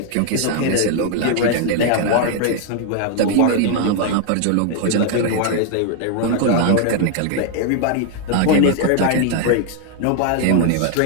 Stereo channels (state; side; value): different; both; correlation 0.00